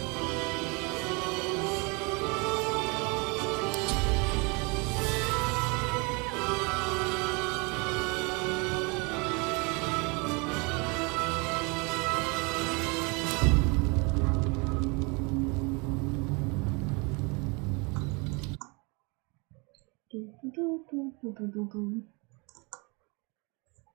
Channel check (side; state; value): left; quieter; 29.8 dB